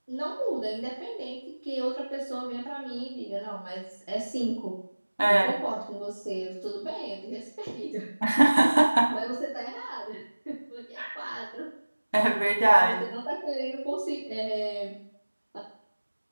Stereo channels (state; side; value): inverted; both; correlation -1.00